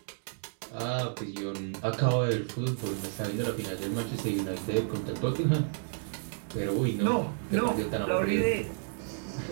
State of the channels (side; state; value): left; silent; digital silence